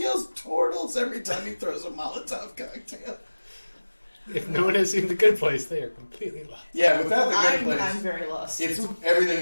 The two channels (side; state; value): both; inverted; correlation -1.00